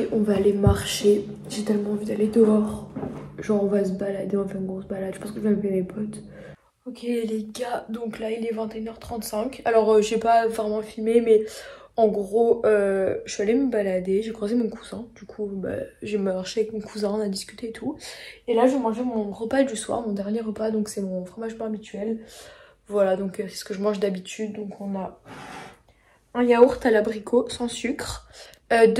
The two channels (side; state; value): both; identical; correlation 1.00